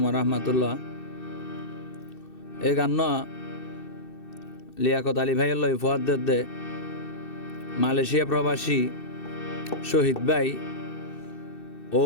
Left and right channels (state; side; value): late; right; 2.6 ms